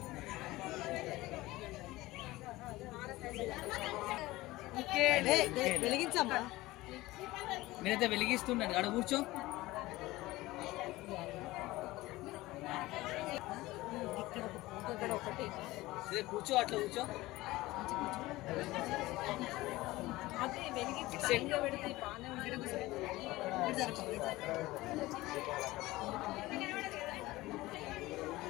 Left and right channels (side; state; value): right; quieter; 18.8 dB